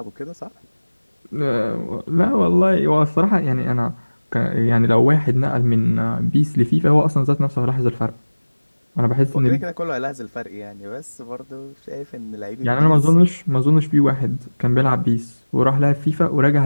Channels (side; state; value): both; inverted; correlation -1.00